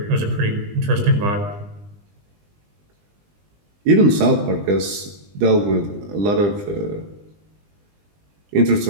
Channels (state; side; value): late; left; 20 ms